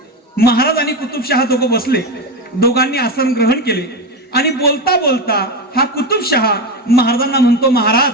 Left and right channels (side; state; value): both; normal; correlation 0.16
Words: महाराज आणि कुतुबशहा दोघं बसले. दोघांनी आसन ग्रहण केले आणि बोलता बोलता हा कुतुबशहा महाराजांना म्हणतो,